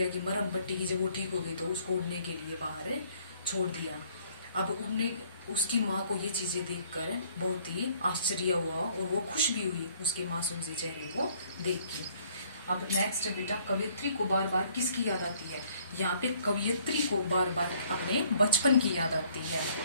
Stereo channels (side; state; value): both; inverted; correlation -0.61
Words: की मरहम पट्टी की। जब वो ठीक हो गई तो उसको उड़ने के लिए बाहर छोड़ दिया। अब उड़ने उसकी माँ को ये चीजें देखकर बहुत ही आश्चर्य हुआ और वो खुश भी हुई उसके मासूम से चेहरे को देख के। अब नेक्स्ट बेटा कवयित्री को बार बार किसकी याद आती है? यहाँ पे कवयित्री को बार बार अपने बचपन की याद आती है।